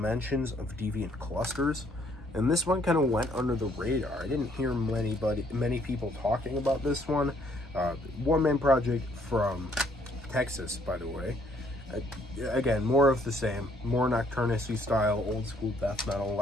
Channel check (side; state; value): both; normal; correlation 0.65